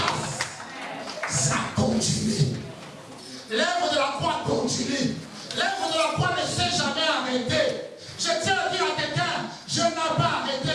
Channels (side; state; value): both; identical; correlation 1.00